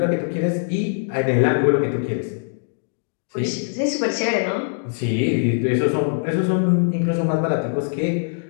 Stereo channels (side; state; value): right; silent; digital silence